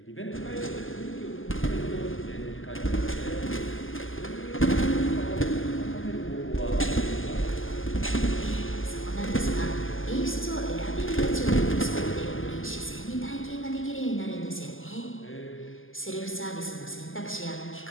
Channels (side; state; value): right; late; 0.59 ms